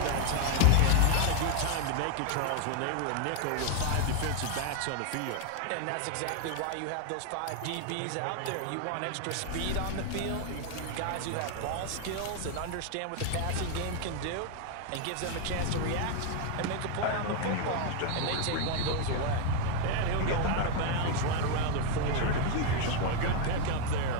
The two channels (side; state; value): both; different; correlation 0.01